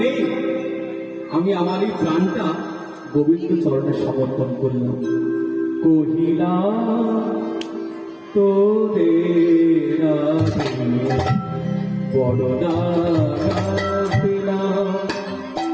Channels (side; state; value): both; identical; correlation 1.00